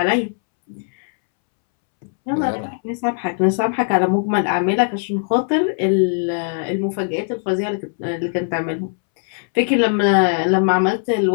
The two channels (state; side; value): silent; right; 66 dB below the other